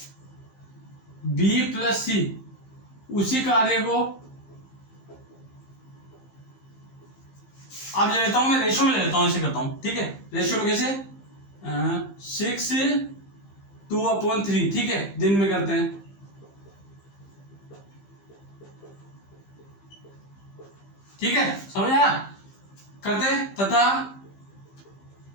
b प्लस सी उसी कार्य को, अब ले लेता हूं मैं रेशियो में ले लेता हूं, ऐसे करता हूं। ठीक है, रेशियो में कैसे, 6/2/3, ठीक है, दिन में करते हैं। ठीक है, समझ आया, करते हैं, तथा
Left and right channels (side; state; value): right; late; 15 ms